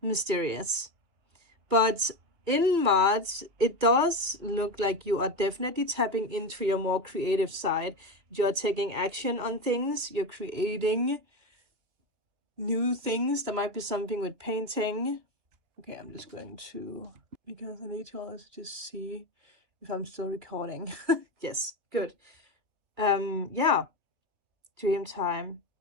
But in March, it does look like you are definitely tapping into your more creative side. You're taking action on things. You're creating new things. There might be something with painting. Okay, I'm just going to, because I need to also just see if I'm still recording. Yes, good. Yeah, dream time.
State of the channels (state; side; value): late; left; 3.0 ms